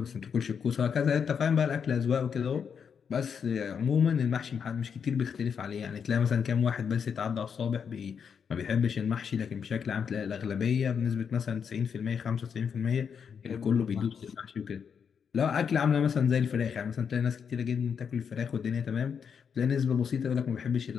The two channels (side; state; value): right; quieter; 6.9 dB